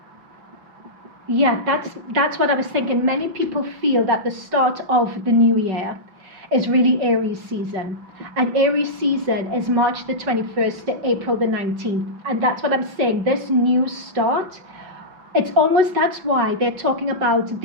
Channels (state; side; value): late; left; 5.3 ms